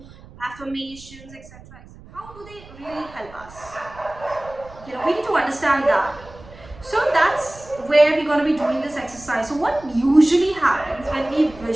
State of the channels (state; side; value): noise; right; rumble, 20 dB below the sound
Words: affirmations, etc. How do they really help us? We need to understand that. So that's where we're going to be doing this exercise. So what usually happens when we